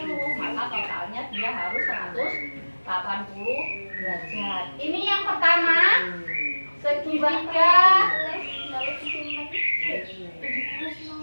Maka totalnya dia harus 180 derajat. Ini yang pertama, segitiga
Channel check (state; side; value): inverted; both; correlation -1.00